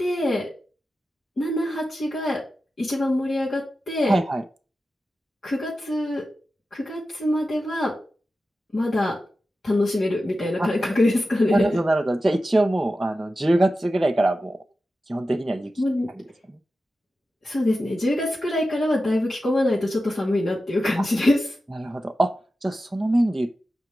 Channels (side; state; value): both; normal; correlation 0.92